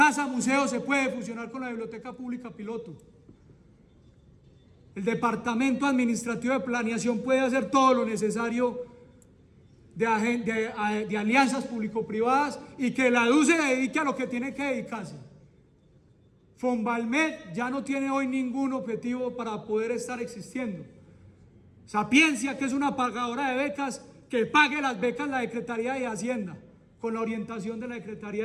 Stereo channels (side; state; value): both; identical; correlation 1.00